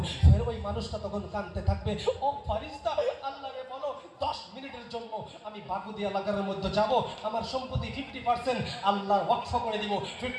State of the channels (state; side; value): identical; both; correlation 1.00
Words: ফের ওই মানুষটা তখন কাঁদতে থাকবে, ও ফারিস্তা, আল্লাহরে বলো 10 মিনিটের জন্য আমি বাগুদি এলাকার মধ্যে যাব, আমার সম্পত্তি 50% আল্লাহর ওয়াকফ করে দিব,